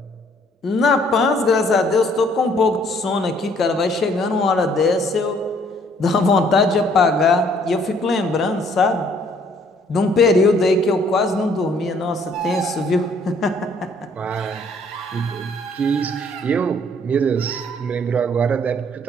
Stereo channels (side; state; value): both; normal; correlation 0.62